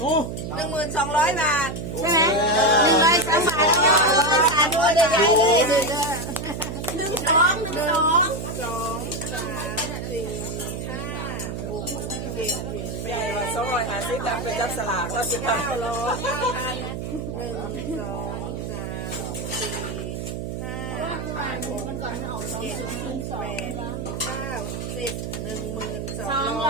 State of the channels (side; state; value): right; noise; hum, 5 dB below the sound